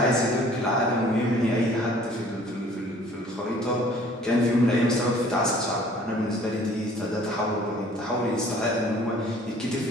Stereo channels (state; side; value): normal; both; correlation 0.53